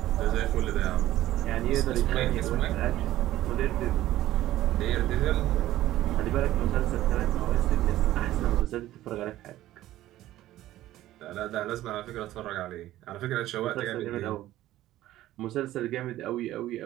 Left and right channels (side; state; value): left; quieter; 14.7 dB